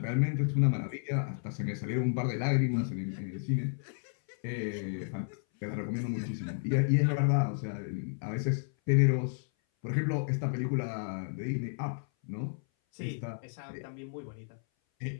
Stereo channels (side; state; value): right; silent; 56 dB below the other